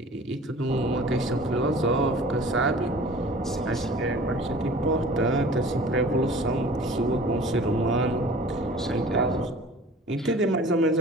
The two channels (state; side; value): normal; both; correlation 0.45